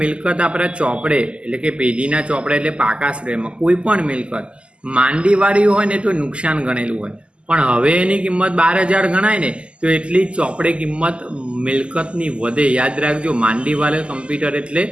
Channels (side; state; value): left; late; 0.053 ms